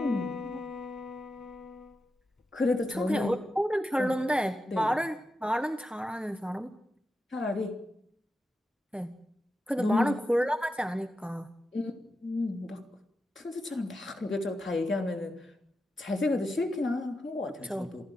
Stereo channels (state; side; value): normal; both; correlation 0.89